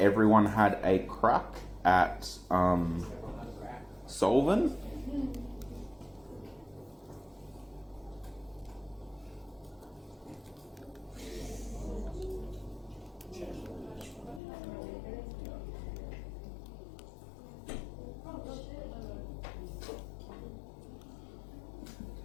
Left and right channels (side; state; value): right; drops out; at 14.4 s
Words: everyone had a crack at solving.